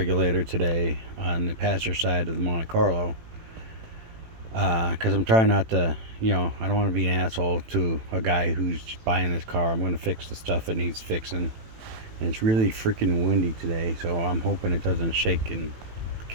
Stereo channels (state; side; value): late; left; 18 ms